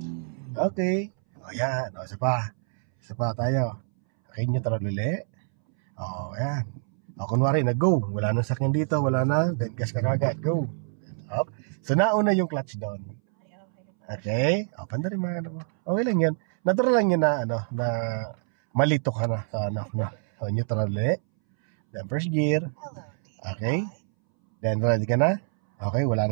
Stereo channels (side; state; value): left; silent; 61 dB below the other